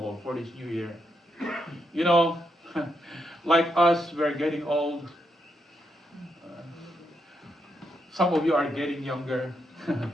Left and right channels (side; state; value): both; normal; correlation 0.81